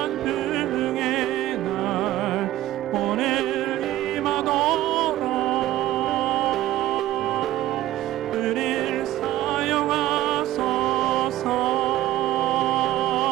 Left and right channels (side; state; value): left; quieter; 14.7 dB